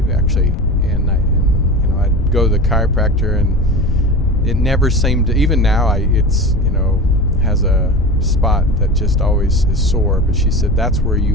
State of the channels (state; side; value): noise; left; rumble, 8 dB below the sound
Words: actually. And I'd go to the chiropractor, and it never seemed to, even now it's has a spot that just always is sore. But she said that's where